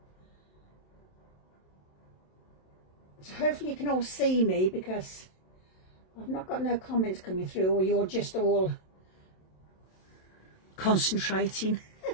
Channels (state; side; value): late; right; 27 ms